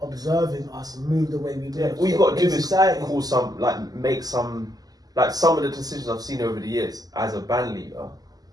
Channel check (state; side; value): late; left; 0.18 ms